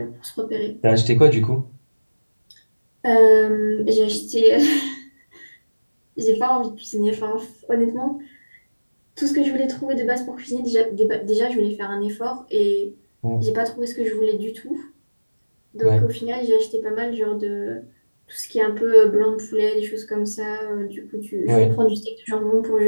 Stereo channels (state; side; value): inverted; both; correlation -1.00